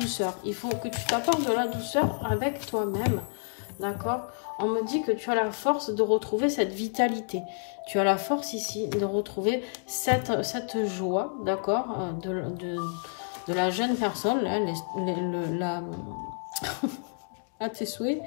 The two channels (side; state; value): right; silent; 58 dB below the other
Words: Il faut que tu t'apportes de la douceur avec toi-même. D'accord? On me dit que tu as la force de retrouver cette vitalité. Tu as la force ici de retrouver cette joie, d'accord, de la jeune personne, là, à tes souhaits,